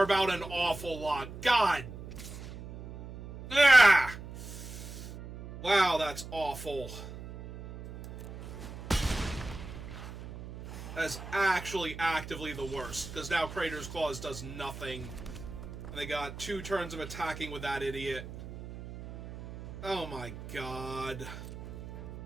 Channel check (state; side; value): noise; right; hum, 12 dB below the sound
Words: about an awful lot. God! Ah! Wow, that's awful. That's actually actively the worst, because now Crater's Claws does nothing. And they got 2 turns of attacking with that idiot. Oh my god.